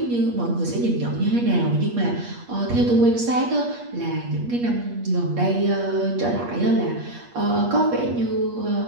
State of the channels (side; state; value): left; late; 8.4 ms